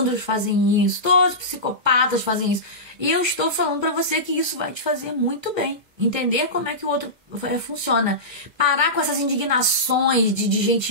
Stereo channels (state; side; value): late; left; 1.3 ms